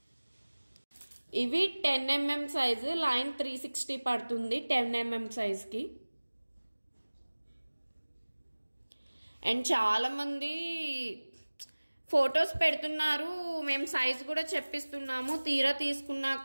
ఇవి 10mm సైజు లైన్ 360 పడుతుంది 10mm సైజ్కి. అండ్ చాలామంది ఫొటోస్ పెడుతున్నారు, మేము సైజ్ కూడా చెప్పిస్తున్నాము, తీరా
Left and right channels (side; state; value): both; inverted; correlation -1.00